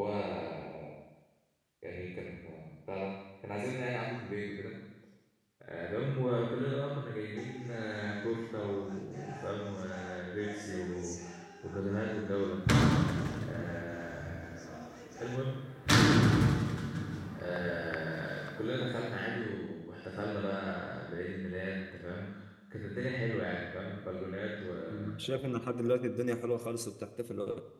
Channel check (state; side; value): identical; both; correlation 1.00